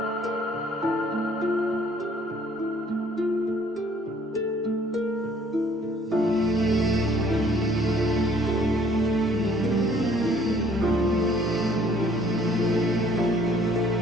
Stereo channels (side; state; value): both; normal; correlation 0.59